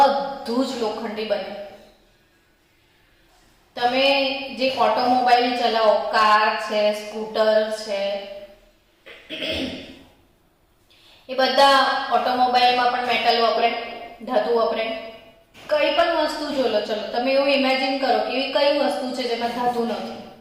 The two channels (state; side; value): identical; both; correlation 1.00